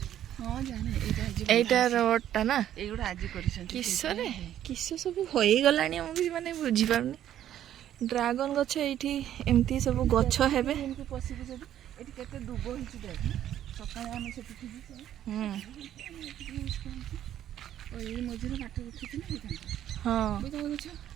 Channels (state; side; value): quieter; left; 11.3 dB